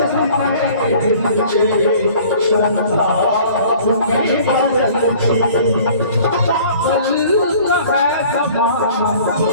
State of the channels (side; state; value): both; inverted; correlation -0.50